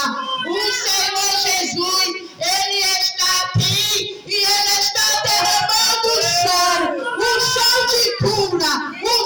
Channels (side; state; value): both; identical; correlation 1.00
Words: O Senhor Jesus, ele está aqui e ele está derramando o som de cura, o